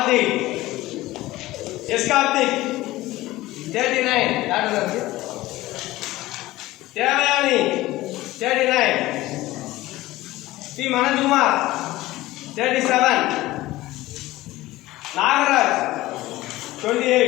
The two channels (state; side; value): quieter; right; 17.6 dB